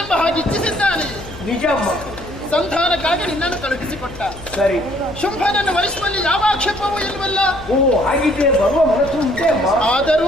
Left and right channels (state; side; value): noise; left; hum, 17 dB below the sound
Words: ಎಂಬ ಹಾಗೆ ಇಚ್ಛಿಸಿದ್ದಾನೆ ನಿಜಮ್ಮ ಸಂಧಾನಕ್ಕಾಗಿ ನಿನ್ನನ್ನು ಕಳುಹಿಸಿಕೊಟ್ಟ ಸರಿ ಶುಂಭನನ್ನು ವರಿಸುವಲ್ಲಿ ಯಾವ ಆಕ್ಷೇಪವೂ ಇಲ್ವಲ್ಲ ಓ ಹಾಗಿದ್ರೆ ಬರುವ ಮನಸ್ಸು ಉಂಟೆ ಅಮ್ಮ